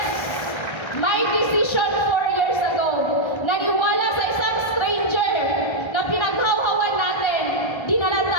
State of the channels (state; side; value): late; right; 1.3 ms